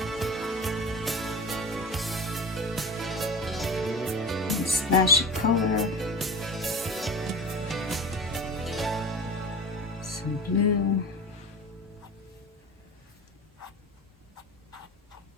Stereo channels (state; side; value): normal; both; correlation 0.31